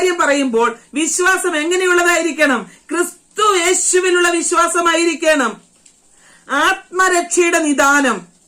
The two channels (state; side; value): identical; both; correlation 1.00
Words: പറയുമ്പോൾ വിശ്വാസം എങ്ങനെയുള്ളതായിരിക്കണം? ക്രിസ്തു യേശുവിലുള്ള വിശ്വാസമായിരിക്കണം. ആത്മരക്ഷയുടെ നിദാനം